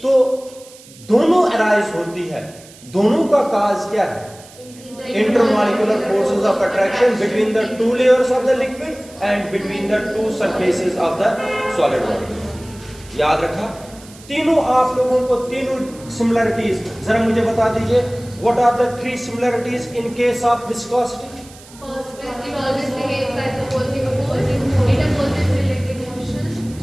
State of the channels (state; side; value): noise; right; hiss, 22 dB below the sound